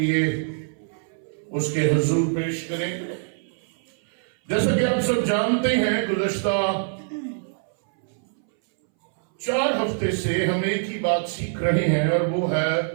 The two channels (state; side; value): silent; left; 61 dB below the other